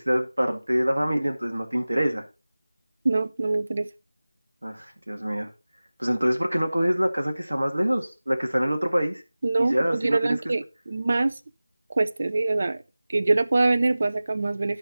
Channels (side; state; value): both; inverted; correlation -0.98